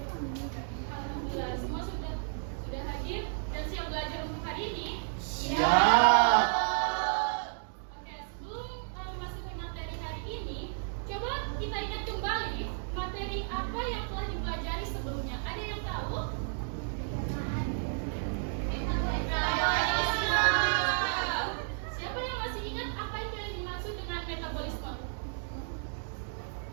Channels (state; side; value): silent; left; digital silence